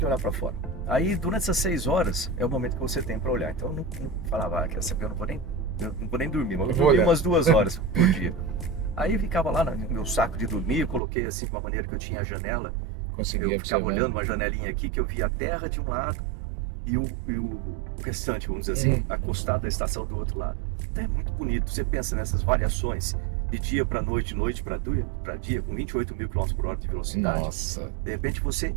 olhar para fora. Aí, durante essas 6 horas, é o momento que você tem para olhar. Então, eu não falava, quer saber, eu não vou nem dormir, mas eu dormi umas 2 horas por dia. Aí, eu ficava lá no meu saco de dormir, eu coloquei assim, de uma maneira que eu tinha a janela. Eu ficava olhando uma janelinha aqui, que eu via a terra de um lado e o restante, vamos dizer assim, acostado da estação do outro lado. Então é muito bonito. Você pensa nessas variações de dia para noite, noite para dia, com 28 mil km por hora de velocidade. Nossa. De repente você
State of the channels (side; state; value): left; drops out; at 11.0 s